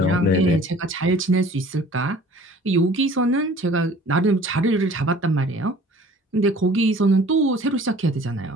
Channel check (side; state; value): both; normal; correlation 0.49